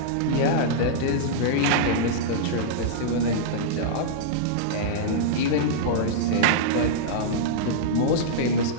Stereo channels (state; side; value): different; both; correlation -0.03